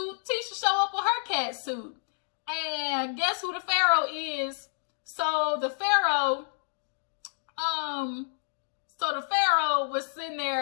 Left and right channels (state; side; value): silent; right; digital silence